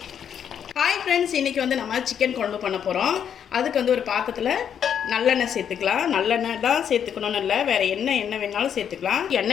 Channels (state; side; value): quieter; right; 8.5 dB